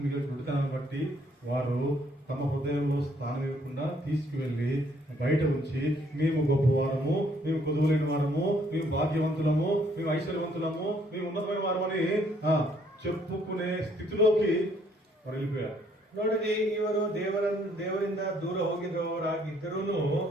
గుడితనాన్ని బట్టి వారు తమ హృదయంలో స్థానం ఇవ్వకుండా తీసుకువెళ్లి బయట ఉంచి మేము గొప్పవారము, మేము కొదువులేని వారము, మేము భాగ్యవంతులము, మేము ఐశ్వర్యవంతులము, మేము ఉన్నతమైన వారమని చెప్పుకునే స్థితిలోకి వారు వెళ్ళిపోయారు. ನೋಡಿರಿ, ಇವರು ದೇವರಿಂದ ದೂರ ಹೋಗಿರುವವರಾಗಿದ್ದರೂ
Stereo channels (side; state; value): both; normal; correlation 0.66